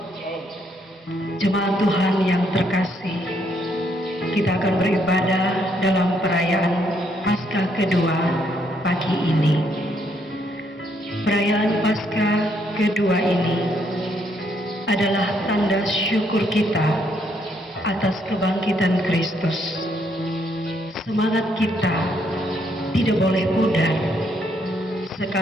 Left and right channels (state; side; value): normal; both; correlation 0.72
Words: jemaat Tuhan yang terkasih. Kita akan beribadah dalam perayaan Paskah kedua pagi ini. Perayaan Paskah kedua ini adalah tanda syukur kita atas kebangkitan Kristus. Semangat kita tidak boleh pudar,